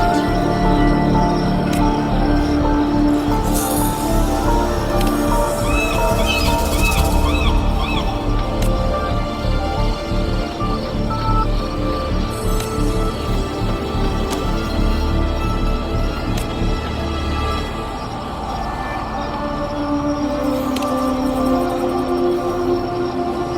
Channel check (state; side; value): identical; both; correlation 1.00